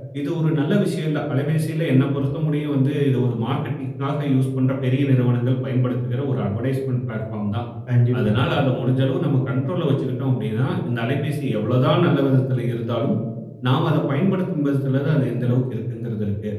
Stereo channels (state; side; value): identical; both; correlation 1.00